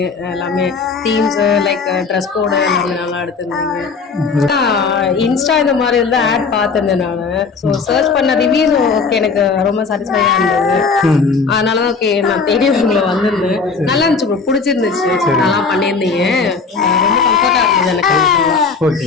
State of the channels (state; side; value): quieter; right; 4.8 dB